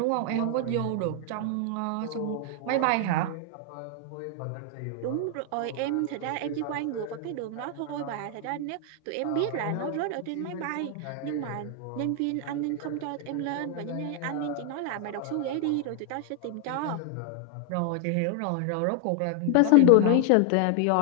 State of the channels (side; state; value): both; different; correlation 0.00